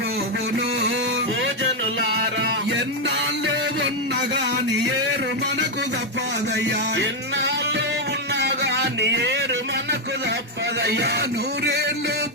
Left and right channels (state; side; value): normal; both; correlation 0.02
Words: భోజనులారా ఎన్నాళ్ళు ఉన్నగాని ఏరు మనకు తప్పదయ్యా ఎన్నాళ్ళు ఉన్నా గాని ఏరు మనకు తప్పదయ్యా నూరేళ్ళు